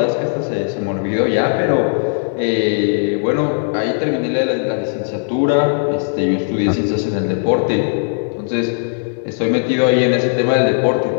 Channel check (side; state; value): right; silent; digital silence